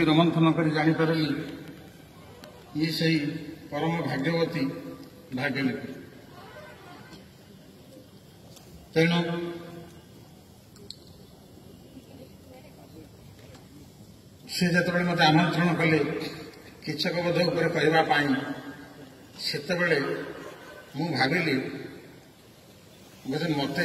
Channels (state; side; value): identical; both; correlation 1.00